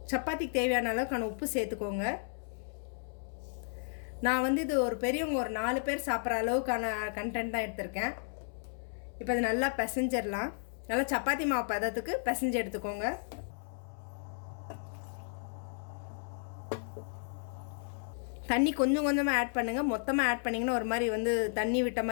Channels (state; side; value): silent; right; 55 dB below the other